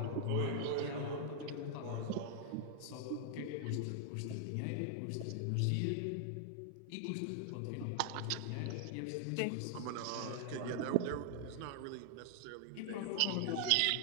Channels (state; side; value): different; both; correlation 0.00